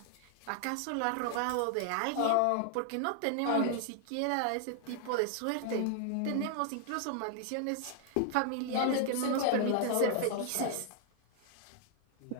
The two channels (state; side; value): different; both; correlation 0.00